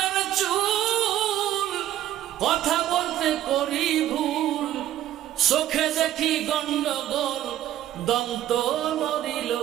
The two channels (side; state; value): left; quieter; 12.7 dB